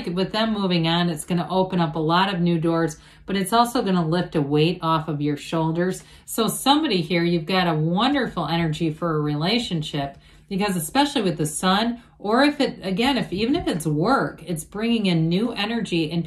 with them moving on, it's going to open up a lot of new doors, but it's also going to lift a weight off of your shoulders. So somebody here, you've got a wonderful energy for a relationship, because especially with the Sun, or if it, again, even if it's work, it's bringing in new energy and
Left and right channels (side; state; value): both; identical; correlation 1.00